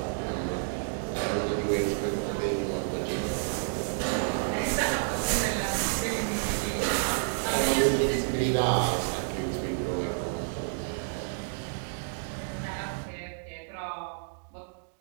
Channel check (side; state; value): left; silent; digital silence